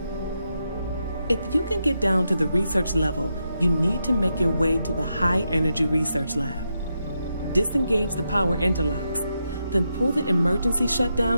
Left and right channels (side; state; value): both; inverted; correlation -0.84